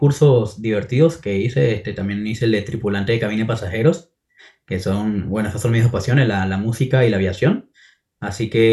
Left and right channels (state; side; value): identical; both; correlation 1.00